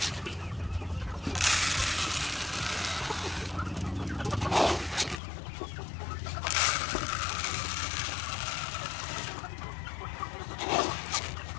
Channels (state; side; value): drops out; right; at 5.2 s